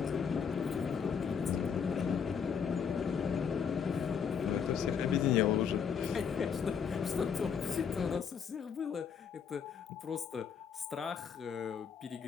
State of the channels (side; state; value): right; quieter; 6.9 dB